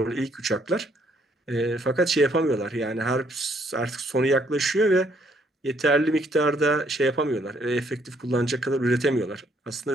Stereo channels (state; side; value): normal; both; correlation 0.68